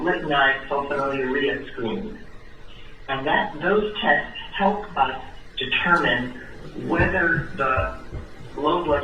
sulfonylurea screen. And those tests help us determine whether the low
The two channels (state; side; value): identical; both; correlation 1.00